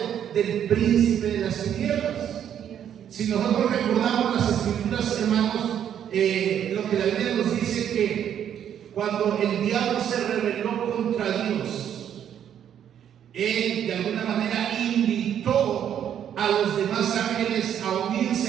del príncipe de las tinieblas. Si nosotros recordamos las escrituras, hermanos, lo que la Biblia nos dice que cuando el diablo se rebeló contra Dios, él de alguna manera invitó a los demás ángeles a unirse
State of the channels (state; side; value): quieter; left; 9.5 dB